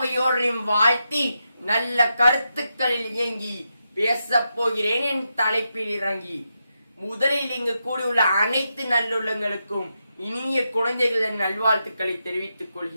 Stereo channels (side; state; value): both; inverted; correlation -0.86